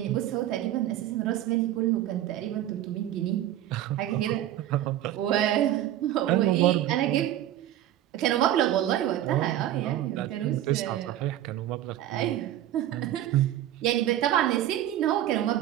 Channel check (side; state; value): left; quieter; 12.7 dB